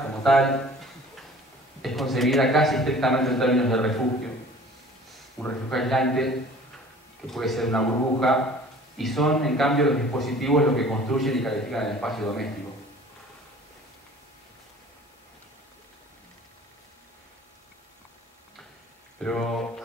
como tal, es concebida casi estrictamente en términos de refugio. Un refugio aislante, que puede ser una burbuja, y son, en cambio, los dispositivos los que construyen y califican el espacio doméstico. Pero,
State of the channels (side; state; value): both; normal; correlation 0.48